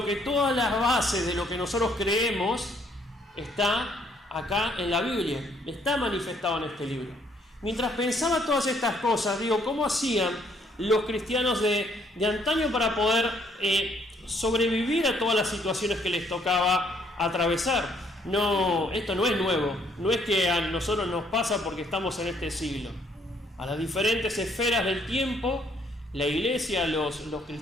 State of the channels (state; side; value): normal; both; correlation 0.66